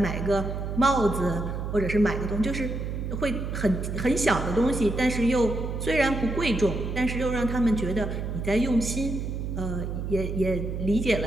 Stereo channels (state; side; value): noise; right; hum, 4 dB below the sound